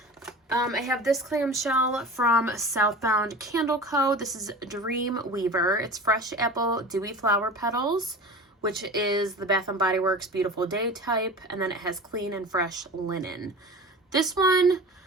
I have this clamshell from Southbound Candle Co. This is Dream Weaver. It's Fresh Apple Dewy Flower Petals, which is the Bath & Body Works Beautiful Day type, and then it has Clean and Fresh Linen. This one,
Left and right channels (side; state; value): both; normal; correlation 0.35